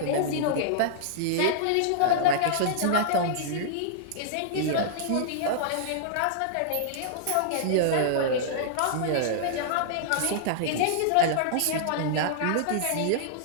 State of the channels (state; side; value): different; both; correlation -0.02